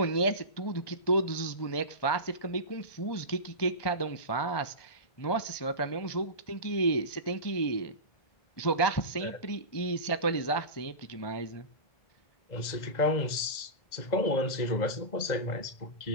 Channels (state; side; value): late; right; 2.0 ms